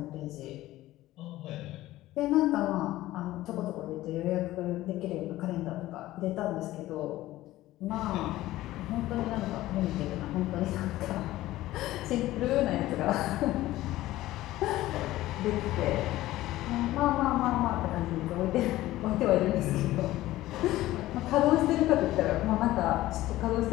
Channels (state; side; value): quieter; right; 16.1 dB